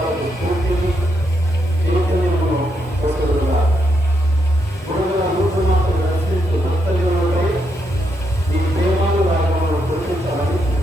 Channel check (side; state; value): both; normal; correlation 0.80